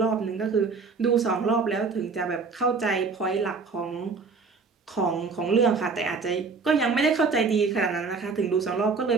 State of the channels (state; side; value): quieter; left; 4.6 dB